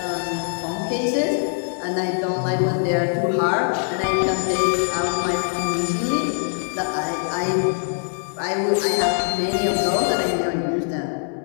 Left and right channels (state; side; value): silent; right; digital silence